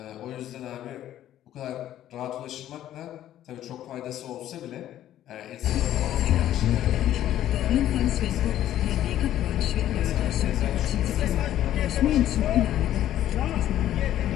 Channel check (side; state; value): right; quieter; 12.3 dB